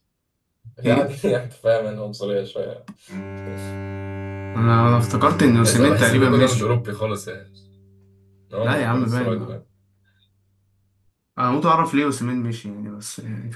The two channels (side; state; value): both; identical; correlation 1.00